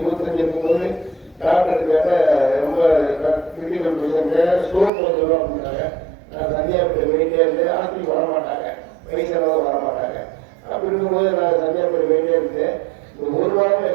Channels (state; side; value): drops out; left; at 4.9 s